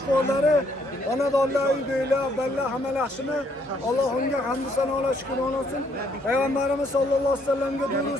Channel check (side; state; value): both; normal; correlation 0.69